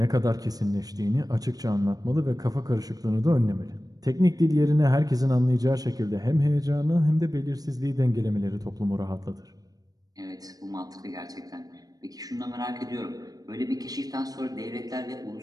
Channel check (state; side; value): late; left; 0.18 ms